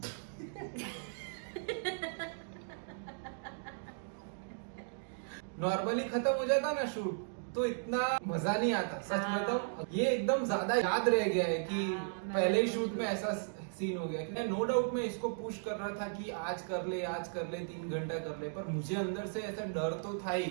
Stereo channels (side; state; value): left; silent; digital silence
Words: नॉर्मली खत्म हो जाता ना शूट तो इतना मजा नहीं आता, सच हाँ। बताऊं ये एकदम ज्यादा याद रह गया है कि हाँ, मैं पहले ही भी शूट में ऐसा सीन हो गया। मैं नो डाउट मैं इसको पुश कर रहा था कि आज कर ले 3 घंटा कर ले, पर मुझे अंदर से ऐसा डर तो था ही